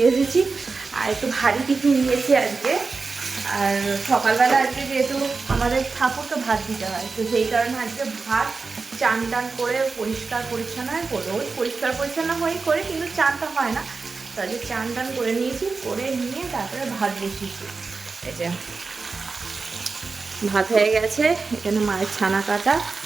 এসেছি। আর একটু ভারী টিফিন নিয়েছি আজকে। আর সকালবেলা আজকে যেহেতু আমাদের ঠাকুরকে ভাত দিতে হয়, তো সেই কারণে আজকে ভাত চান টান করে পরিষ্কার পরিচ্ছন্ন হয়ে করবো। ওই পরিষ্কার পরিচ্ছন্ন হয়েই করে, কিন্তু চানটা হয় না। তো আজকে চান টান করে নিয়েছি, করে নিয়ে তারপরে ভাত বসিয়েছি। এই যে ভাত হয়ে গেছে, এখানে মায়ের ছানা কাটা,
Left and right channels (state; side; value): quieter; left; 4.3 dB